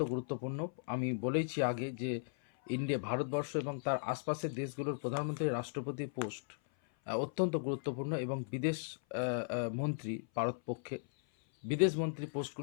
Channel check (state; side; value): silent; right; 53 dB below the other